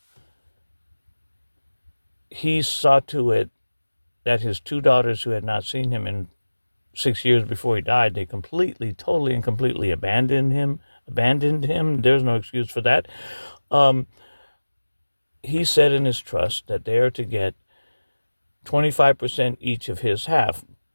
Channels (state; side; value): inverted; both; correlation -1.00